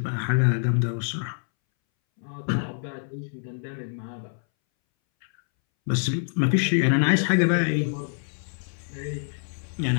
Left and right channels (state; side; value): silent; right; 61 dB below the other